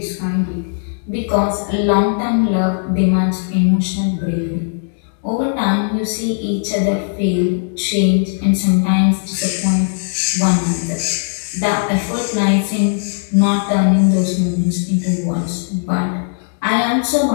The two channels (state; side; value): silent; right; digital silence